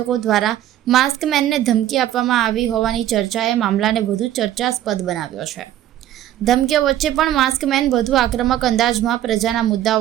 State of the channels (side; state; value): left; quieter; 12.5 dB